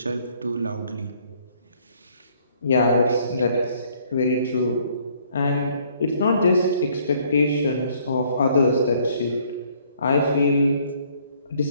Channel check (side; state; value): both; inverted; correlation -0.63